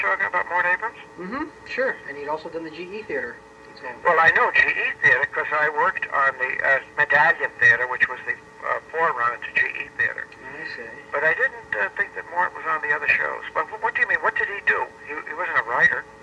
about Mort Abrams? Mm-hmm, sure. And he'd also done the GE Theater. Well, I know GE Theater because I worked on the Medallion Theatre, which was the forerunner to GE Theater. I see. But I didn't think that Mort was on the other shows. But what do you mean? What did he do? He wasn't a writer.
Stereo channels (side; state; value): both; identical; correlation 1.00